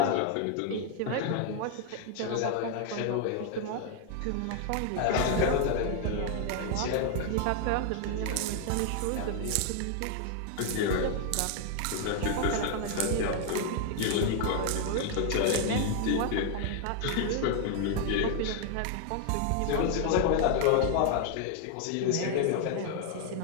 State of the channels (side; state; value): both; different; correlation 0.00